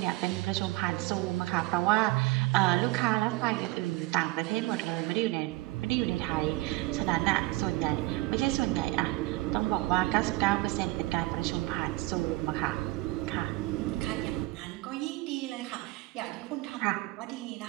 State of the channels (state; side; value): quieter; left; 20.4 dB